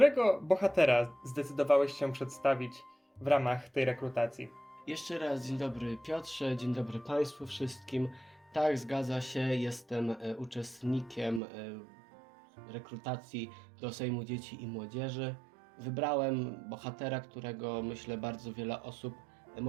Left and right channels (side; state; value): left; drops out; at 11.4 s